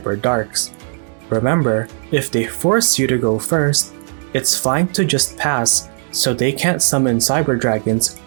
Remember, if they force you to go first, it's fine to just pass so they can't summon Cyber Dragons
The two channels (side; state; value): left; silent; digital silence